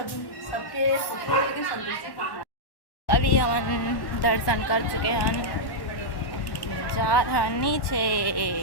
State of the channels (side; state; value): right; late; 1.1 ms